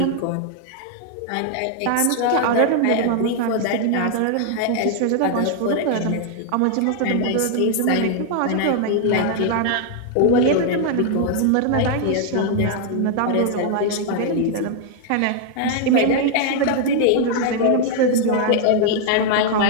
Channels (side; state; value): both; different; correlation 0.00